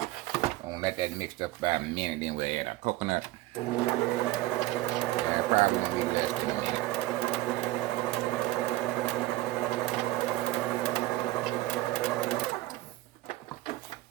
gonna let that mix up about a minute, then we'll add our coconut. Probably gonna be less than a minute.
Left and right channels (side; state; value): left; quieter; 17.5 dB